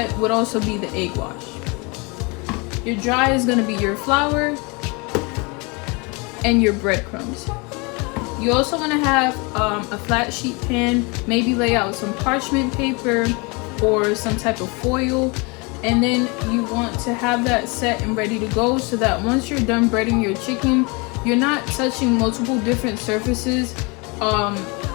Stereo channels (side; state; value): right; quieter; 29.2 dB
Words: would also be the egg wash. Your dry is going to be your flour and your breadcrumbs. You also want to have a flat sheet pan, maybe lay out some parchment paper or some type of foil, and then you want to have that set and ready to go so that once you're done breading your chicken, you're not touching multiple different surfaces